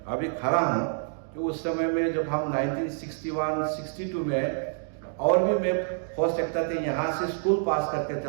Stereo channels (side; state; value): left; silent; digital silence